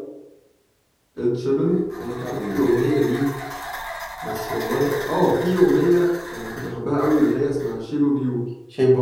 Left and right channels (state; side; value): identical; both; correlation 1.00